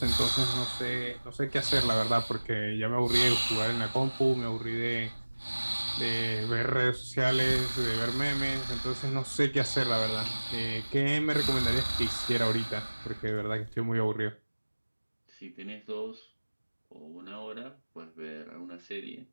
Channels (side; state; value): both; inverted; correlation -1.00